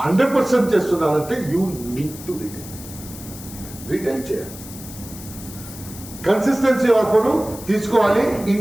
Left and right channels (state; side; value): noise; left; hiss, 15 dB below the sound